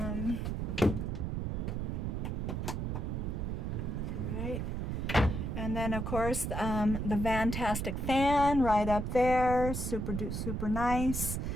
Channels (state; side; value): noise; right; rumble, 2 dB below the sound